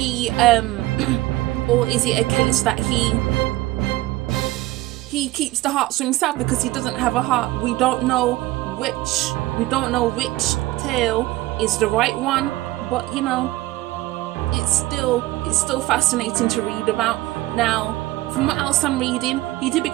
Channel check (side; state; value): left; quieter; 17.9 dB